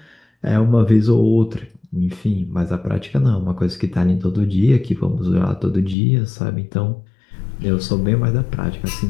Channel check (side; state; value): right; drops out; at 6.0 s